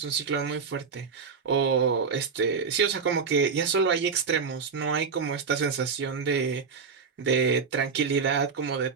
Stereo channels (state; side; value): quieter; left; 5.5 dB